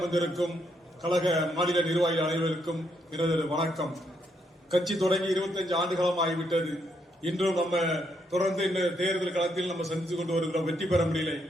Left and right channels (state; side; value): normal; both; correlation 0.76